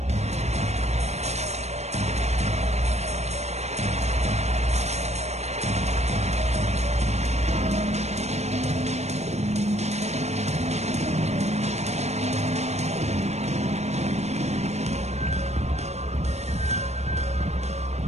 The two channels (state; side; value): late; left; 0.32 ms